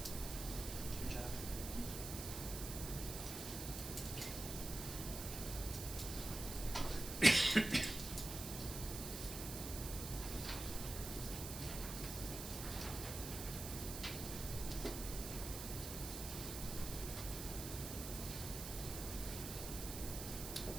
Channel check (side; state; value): right; noise; hiss, 6 dB below the sound